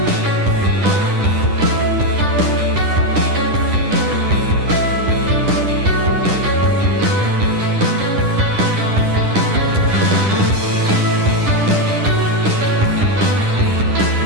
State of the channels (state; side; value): late; left; 10 ms